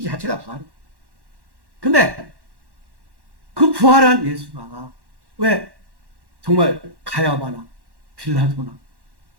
자체가 부활이에요. 근데 그 부활한 예수가 왜 정말 가야바나 빌라도나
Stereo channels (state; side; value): late; left; 1.1 ms